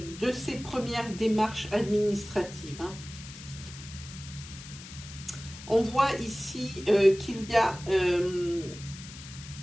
ces premières démarches administratives. Hein. On voit ici qu'il y a,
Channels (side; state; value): left; noise; hiss, 15 dB below the sound